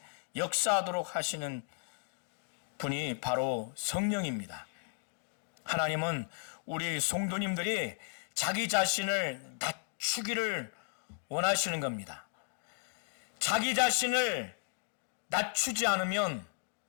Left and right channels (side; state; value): right; silent; 55 dB below the other